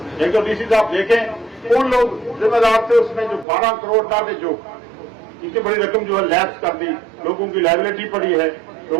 एक तो डीसी साहब देखें कौन लोग जिम्मेदार थे उसमें जो 12 करोड़ डाले, जो इनकी बड़ी रकम जो है लैप्स कर दी, लोगों की लायबिलिटी पड़ी है,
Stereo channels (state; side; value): drops out; left; at 3.5 s